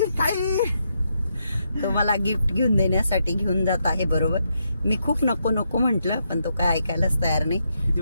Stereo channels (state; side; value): inverted; both; correlation -0.80